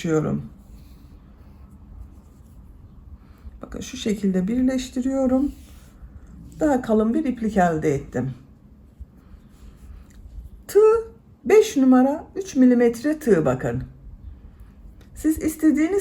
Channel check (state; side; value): identical; both; correlation 1.00